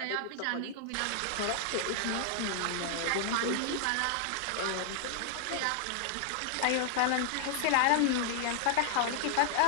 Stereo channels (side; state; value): both; different; correlation 0.00